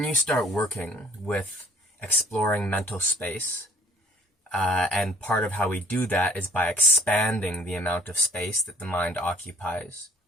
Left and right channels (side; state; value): both; normal; correlation 0.56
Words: you start working with exploring mental space, and part of how we do that is by expanding the amount of space that the mind occupies